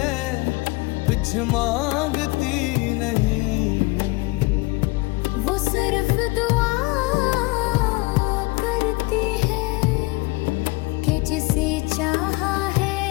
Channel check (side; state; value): right; quieter; 23.6 dB